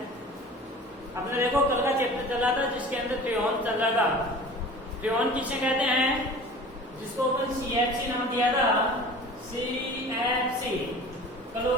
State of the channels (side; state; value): both; normal; correlation 0.41